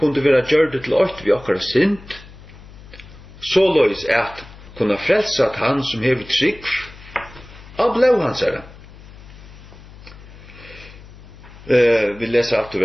være gjørdet til ått vi okkara synd, såleis at kunne frelse at han som hever trygg av blå hans herre. Vi leser alt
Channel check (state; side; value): noise; left; hum, 19 dB below the sound